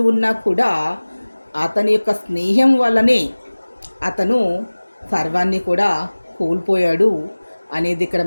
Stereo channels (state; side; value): inverted; both; correlation -1.00